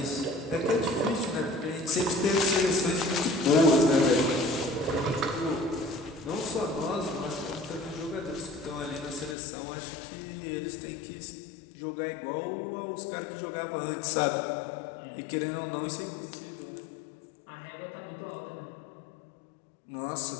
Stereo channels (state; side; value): drops out; right; at 9.3 s